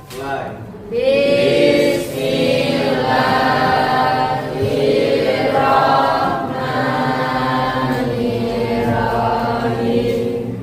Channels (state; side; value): identical; both; correlation 1.00